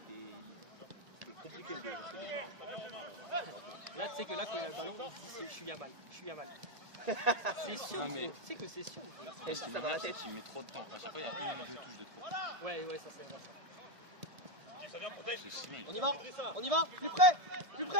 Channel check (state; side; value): late; left; 1.7 ms